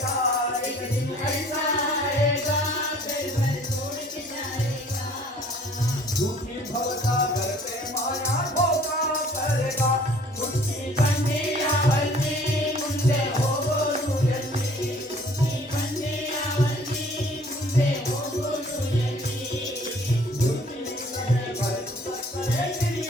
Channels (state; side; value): normal; both; correlation 0.54